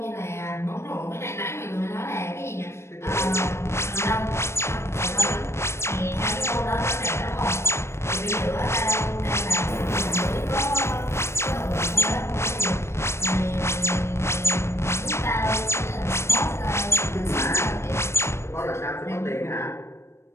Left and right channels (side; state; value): right; late; 0.13 ms